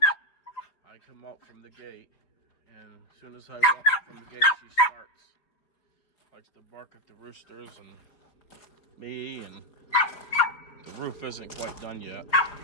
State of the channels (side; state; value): right; late; 5.0 ms